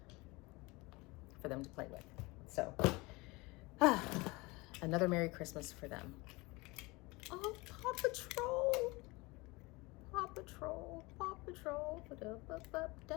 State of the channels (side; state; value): right; quieter; 24.0 dB